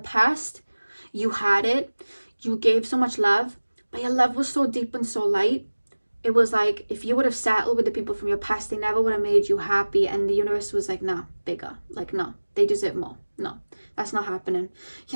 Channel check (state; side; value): inverted; both; correlation -1.00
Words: you had it, you gave so much love, but your love was so deep and so light. It was like if you would have settled with the people from your past, they never would have made you happy. And the universe was like, nah, bigger. Like, no, they deserve more. No, that's not happening.